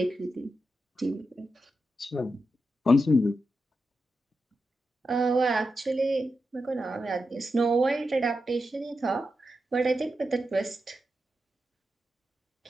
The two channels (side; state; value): both; normal; correlation 0.88